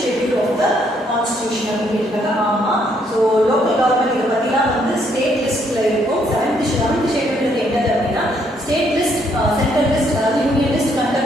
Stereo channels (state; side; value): normal; both; correlation 0.70